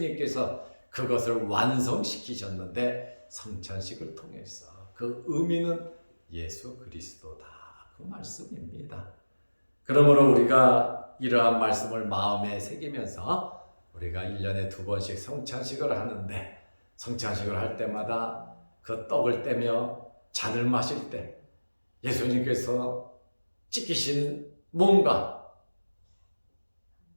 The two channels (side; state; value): both; inverted; correlation -1.00